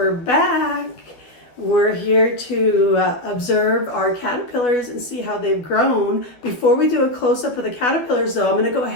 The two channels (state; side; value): late; right; 12 ms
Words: back. We're here to observe our caterpillars and see how they've grown. Before we do a close-up of the caterpillars though, I'm going to go